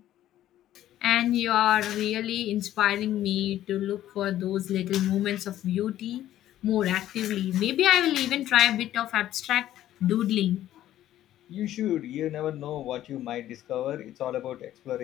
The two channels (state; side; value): quieter; right; 12.9 dB